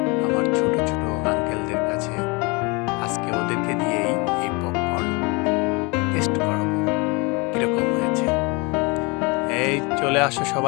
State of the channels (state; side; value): quieter; right; 28.4 dB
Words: আমার ছোট ছোট আঙ্কেলদের কাছে। আজকে ওদেরকে দিয়েই এই পপকর্ন টেস্ট করাবো কিরকম হয়েছে। এই চলে আসো